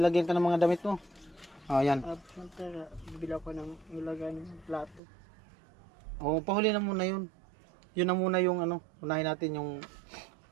ka ng mga damit mo. Oh, yan. Siyempre, bibili ako ng ilagay ng plato. Oh, pahuli na muna yun. Yun na muna yung ano, unahin natin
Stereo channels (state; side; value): drops out; left; at 5.0 s